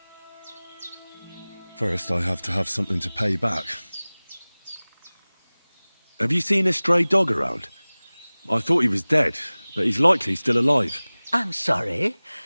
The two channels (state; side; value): inverted; both; correlation -1.00